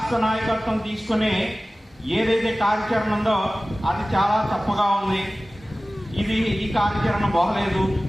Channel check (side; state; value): both; normal; correlation 0.97